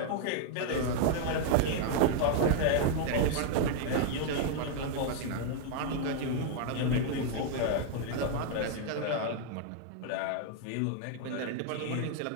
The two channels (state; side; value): different; both; correlation 0.00